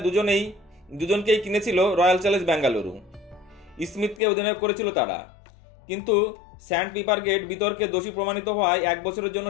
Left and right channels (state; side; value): drops out; right; at 4.2 s